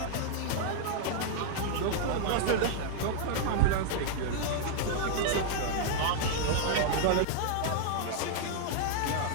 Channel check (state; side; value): different; both; correlation -0.01